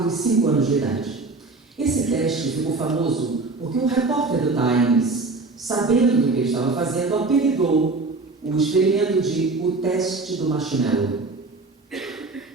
e 5 anos de idade. Esse teste ficou famoso porque um repórter do Times, sabendo do que ele estava fazendo, apelidou o experimento de o teste do marshmallow.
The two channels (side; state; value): left; quieter; 3.6 dB